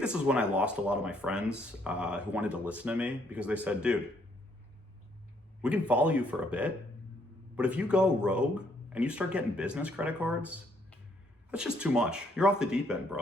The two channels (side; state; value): both; normal; correlation 0.69